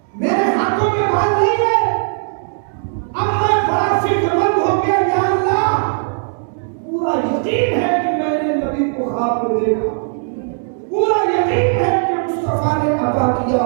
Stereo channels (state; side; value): silent; left; digital silence